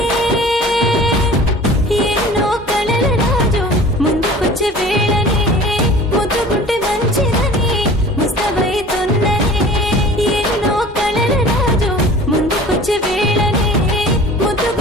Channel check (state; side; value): normal; both; correlation 0.43